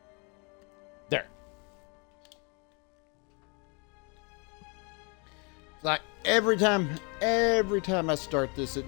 There. Like every time I start this, it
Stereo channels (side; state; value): right; quieter; 32.6 dB